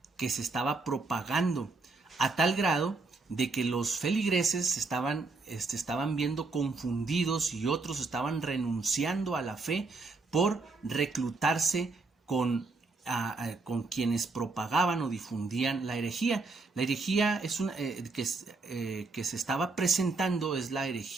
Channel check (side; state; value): left; quieter; 3.8 dB